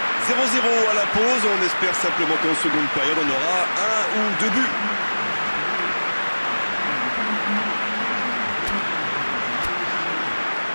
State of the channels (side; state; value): both; inverted; correlation -1.00